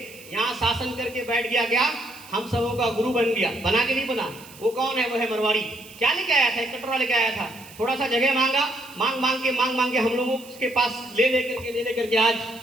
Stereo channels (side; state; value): right; noise; hiss, 20 dB below the sound